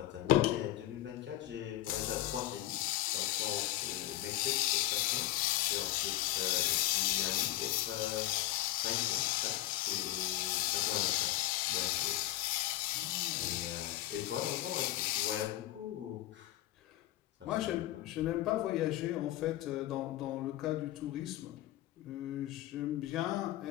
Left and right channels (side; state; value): right; quieter; 14.6 dB